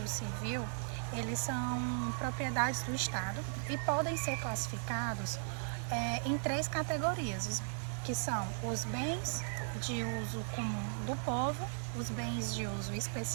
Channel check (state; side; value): silent; left; digital silence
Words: Civil, eles são propriedades do Estado e podem ser classificados em 3 categorias, que são os bens de uso comum do povo, os bens de uso